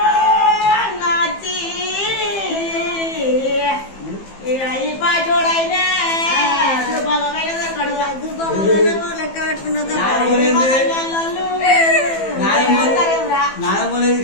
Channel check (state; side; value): late; right; 15 ms